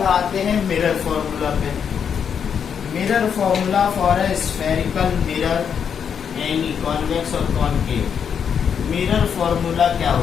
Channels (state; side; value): quieter; right; 7.4 dB